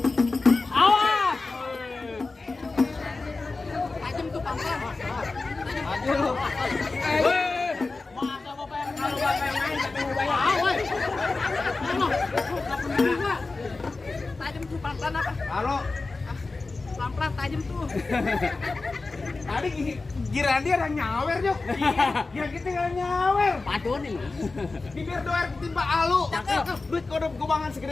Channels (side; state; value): right; quieter; 3.7 dB